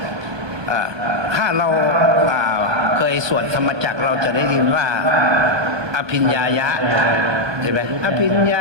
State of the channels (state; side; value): late; left; 1.2 ms